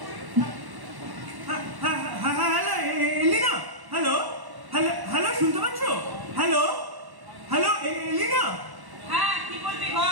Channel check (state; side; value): late; left; 1.1 ms